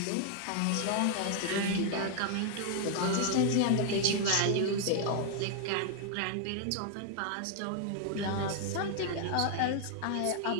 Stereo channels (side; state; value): both; different; correlation 0.00